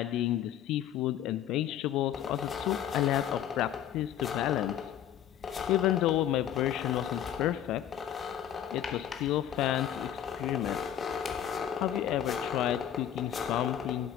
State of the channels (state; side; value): quieter; right; 10.6 dB